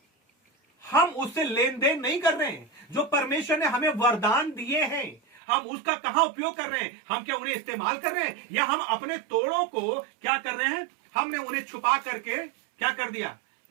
हम उससे लेन देन नहीं कर रहे हैं। जो परमेश्वर ने हमें वरदान दिए हैं, हम उसका कहां उपयोग कर रहे हैं? हम क्या उन्हें इस्तेमाल कर रहे हैं, या हम अपने तोड़ों को क्या कर रहे हैं? हमने उन्हें छुपा करके क्या कर दिया?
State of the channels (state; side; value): drops out; left; at 5.4 s